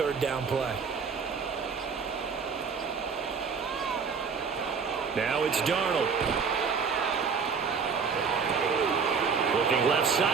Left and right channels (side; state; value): left; quieter; 5.7 dB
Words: down play. Now it's Darnold. Looking left